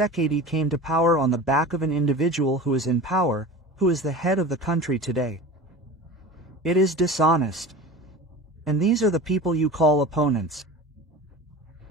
came to power on the back of an individual who is in power, who is the head of the country today. It is dishonest. And these are the people you call opponents.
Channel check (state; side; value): normal; both; correlation 0.34